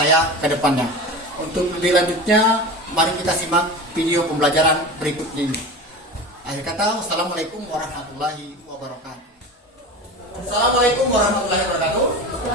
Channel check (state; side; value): normal; both; correlation 0.30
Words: ke depannya. Untuk lebih lanjutnya, mari kita simak video pembelajaran berikut ini. Akhir kata, wassalamualaikum warahmatullahi wabarakatuh. Assalamualaikum warahmatullahi wabarakatuh.